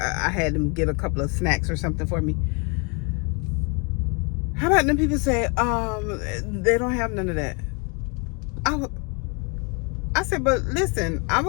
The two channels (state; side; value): quieter; right; 33.8 dB